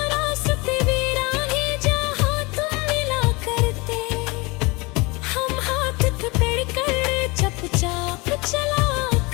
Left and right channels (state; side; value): quieter; right; 26.0 dB